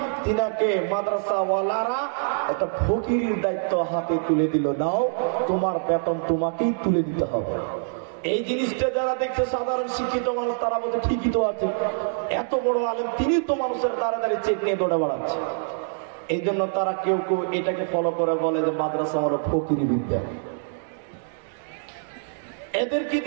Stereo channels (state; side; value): silent; left; digital silence